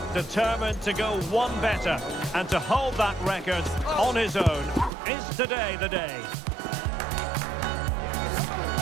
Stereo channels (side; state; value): left; drops out; at 4.9 s